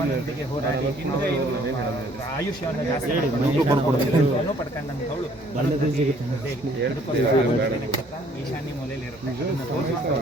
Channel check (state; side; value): normal; both; correlation 0.60